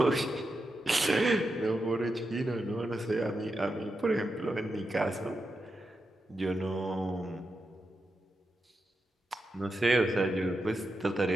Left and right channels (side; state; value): both; normal; correlation 0.87